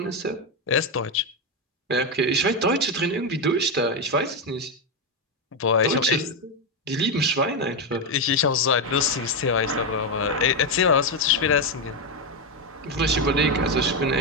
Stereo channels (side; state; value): both; normal; correlation 0.08